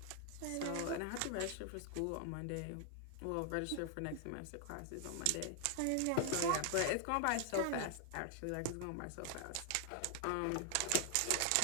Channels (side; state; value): both; different; correlation 0.00